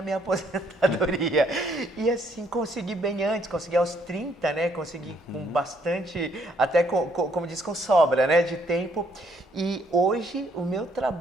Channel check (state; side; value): normal; both; correlation 0.68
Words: minha aposentadoria. E assim, consegui bem antes, consegui aos 30, né? Consegui com bastante, até como diz, com sobra, né? De tempo. E hoje o meu